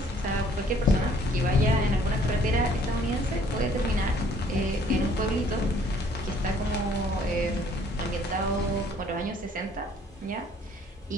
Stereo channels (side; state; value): both; normal; correlation 0.59